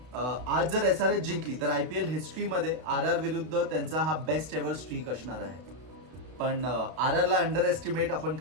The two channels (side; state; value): left; late; 32 ms